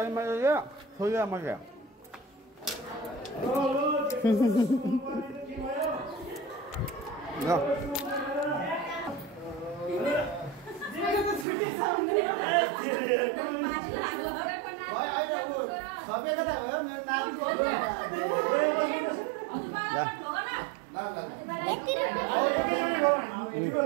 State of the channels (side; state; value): left; drops out; at 11.5 s